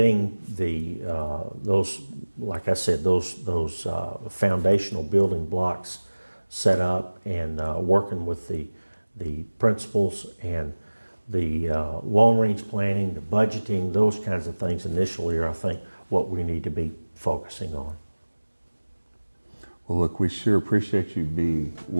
those, like I said, those foundational building blocks set up, and working with the principals and the long-range planning, the budgeting, those kinds of things initially are, I think, what we need to be focusing on. Well, look, we sure appreciate you being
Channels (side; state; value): both; inverted; correlation -1.00